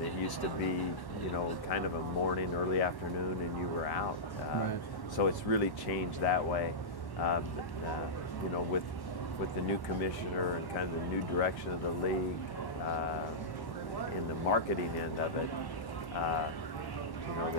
it used to be, you know, kind of a morning, early afternoon, and you were out. Right. So it's really changed that way. You know, with the new commissioner and kind of the new direction of the league, in the marketing end of it, you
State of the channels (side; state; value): right; late; 1.1 ms